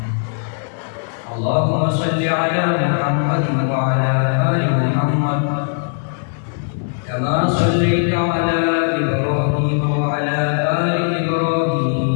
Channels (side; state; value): right; silent; digital silence